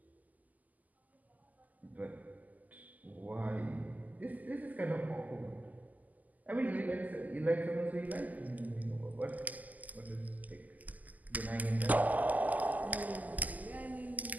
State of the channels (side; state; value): left; late; 0.080 ms